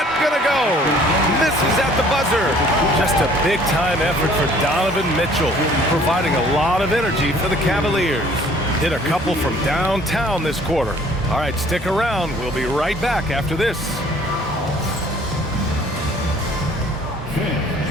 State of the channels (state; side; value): normal; both; correlation 0.55